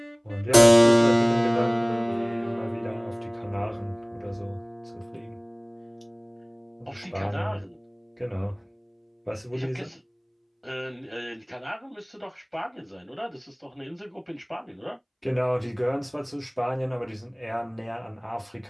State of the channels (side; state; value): both; identical; correlation 1.00